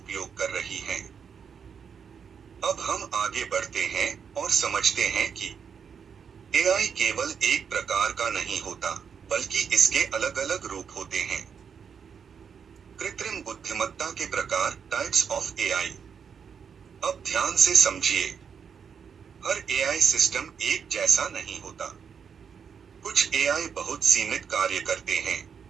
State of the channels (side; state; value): left; quieter; 6.9 dB